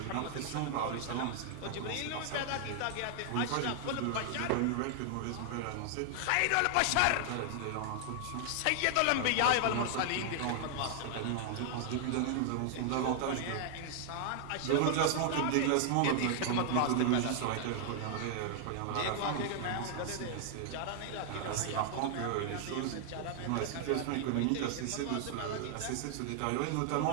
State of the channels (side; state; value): both; different; correlation 0.00